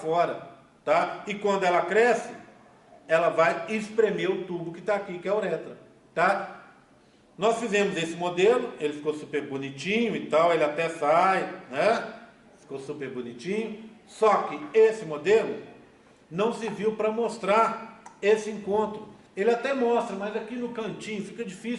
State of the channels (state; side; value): identical; both; correlation 1.00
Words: tá? E quando ela cresce, ela vai espremer o tubo que está aqui, que é a uretra, tá? Nós fizemos esse modelo, ele ficou super bonitinho e tal, ele até sai, né? Ficou super bonitinho. Só que esse modelo não serviu para mostrar esse encontro. Ele até mostra, mas aqui no cantinho fica